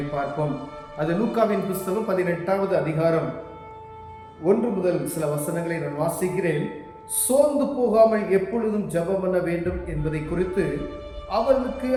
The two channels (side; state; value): both; identical; correlation 1.00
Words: பார்ப்போம். அது லூக்காவின் புஸ்தகம் 18வது அதிகாரம் 1 முதல் சில வசனங்களை நான் வாசிக்கிறேன். சோர்ந்து போகாமல் எப்பொழுதும் ஜெபம் பண்ண வேண்டும் என்பதை குறித்து அவர்களுக்கு